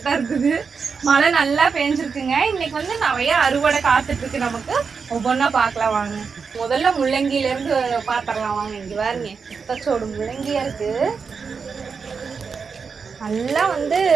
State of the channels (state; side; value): quieter; left; 5.5 dB